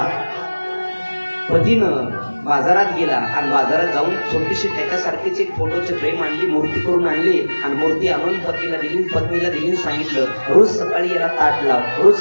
पतीनं बाजारात गेला आणि बाजारात जाऊन छोटीशी त्याच्यासारखीच एक फोटोची फ्रेम आणली, मूर्ती करून आणली आणि मूर्ती आणून पतीला दिली, पत्नीला दिली. सांगितलं, रोज सकाळी याला ताट लाव, रोज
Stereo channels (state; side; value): inverted; both; correlation -1.00